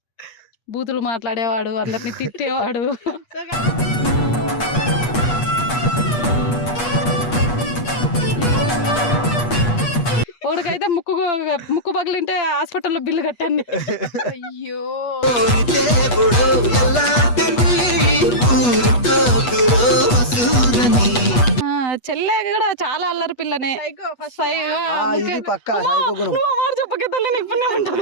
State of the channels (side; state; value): right; late; 8.3 ms